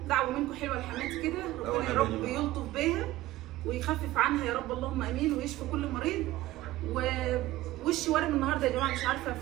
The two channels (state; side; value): quieter; left; 16.6 dB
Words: دعوه منكم حلوه لحماتي كده، ربنا يا رب يلطف بيها ويخفف عنها يا رب، اللهم امين، ويشفي كل مريض. ووشي وارم النهارده يا جماعه، مش عارفه